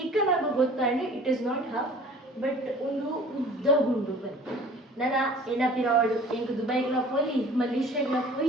ಗೊತ್ತಾಂಡು it is not half but ಒಂದು ಉದ್ದ ಉಂಡು ಬಂತು ನನ್ನ ಎನ್ನ ಪಿರಾಡ್ ಎಂಕ್ ದುಬೈಗ್ಲ ಪೋಲಿ ಮಲೇಷ್ಯಾಗ್ಲ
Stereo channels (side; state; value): both; normal; correlation 0.48